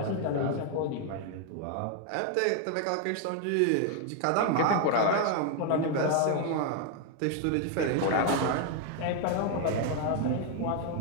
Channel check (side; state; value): both; different; correlation 0.00